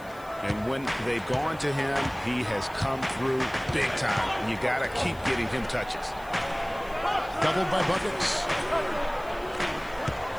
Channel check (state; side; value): noise; left; hiss, 24 dB below the sound